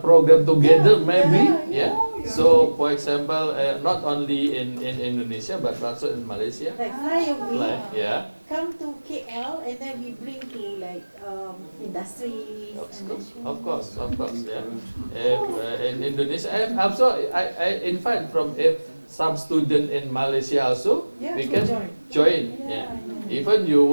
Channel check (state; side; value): inverted; both; correlation -1.00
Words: together, maybe. So, for example, not only in Indonesia but also in Malaysia. Like fly away, come to KL, and then we bring to like industries. Of course, in Indonesia, and also I invite from some student in Malaysia also. We can join. Even you